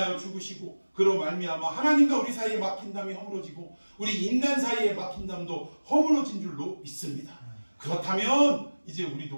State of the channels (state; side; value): inverted; both; correlation -1.00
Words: 죽으시고 그로 말미암아 하나님과 우리 사이에 막힌 담이 허물어지고 우리 인간 사이에 막힌 담도 허물어진 줄로 믿습니다. 그렇다면 이제